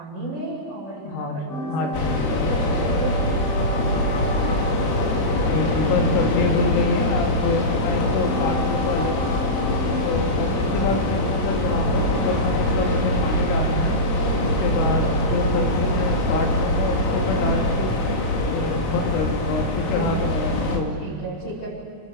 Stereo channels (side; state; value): right; late; 26 ms